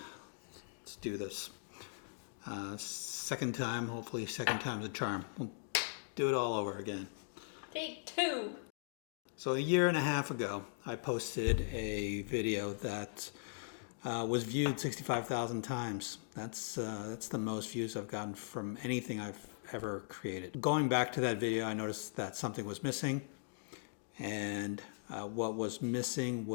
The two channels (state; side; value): silent; right; digital silence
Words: let's do this. Second time, hopefully second time's a charm. We'll do it all over again. Take two. So a year and a half ago, I posted a video that was viewed 65,000 times. That's the most views I've gotten from anything I've ever created. Going back to that video, I noticed that something was missing, and what was missing